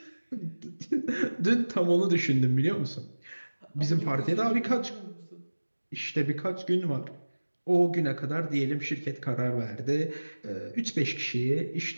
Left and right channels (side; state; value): both; inverted; correlation -1.00